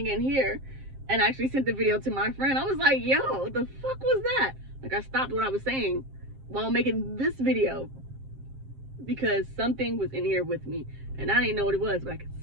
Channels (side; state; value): left; late; 7.5 ms